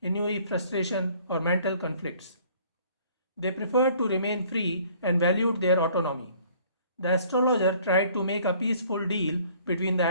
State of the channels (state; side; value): inverted; both; correlation -0.57